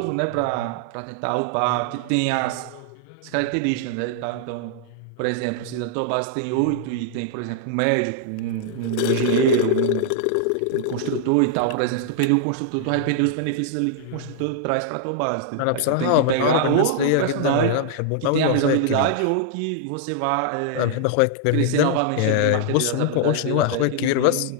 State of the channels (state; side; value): different; both; correlation -0.01